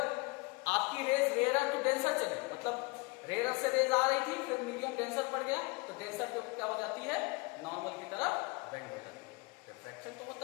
आपकी रेज रेयर टू डेंसर चली, मतलब रेयर से रेज आ रही थी, फिर मीडियम डेंसर पड़ गया, तो डेंसर पे क्या हो जाती है, नॉर्मल की तरफ बेंड हो जाती है। रिफ्रैक्शन तो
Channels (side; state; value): right; quieter; 27.5 dB